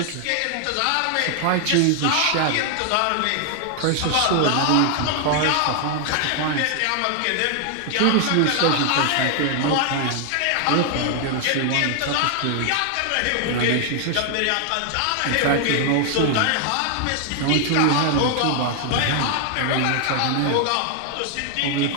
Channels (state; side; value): different; both; correlation 0.00